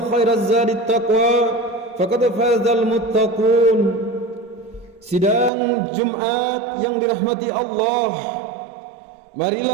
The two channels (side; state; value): left; drops out; at 5.5 s